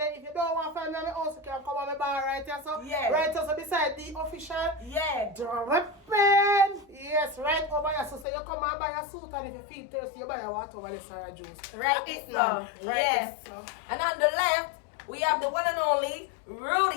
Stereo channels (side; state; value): right; drops out; at 8.2 s